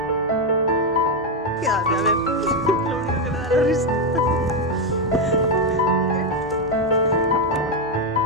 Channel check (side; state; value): both; normal; correlation 0.05